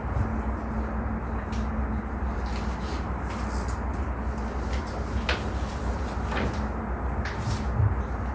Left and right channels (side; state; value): both; identical; correlation 1.00